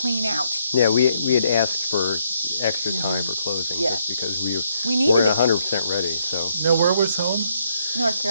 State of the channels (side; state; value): both; inverted; correlation -0.73